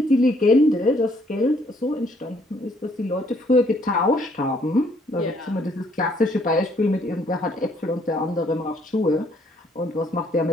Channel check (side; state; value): both; normal; correlation 0.66